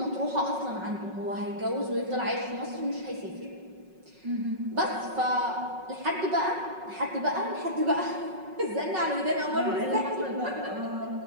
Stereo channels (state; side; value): late; left; 5.4 ms